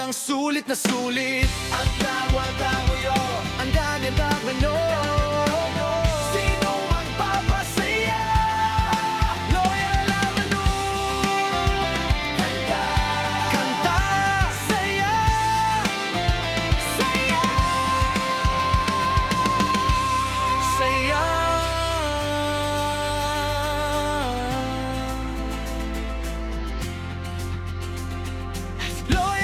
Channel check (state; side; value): identical; both; correlation 1.00